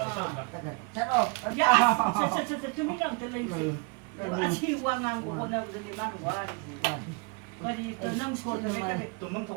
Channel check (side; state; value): left; quieter; 31.9 dB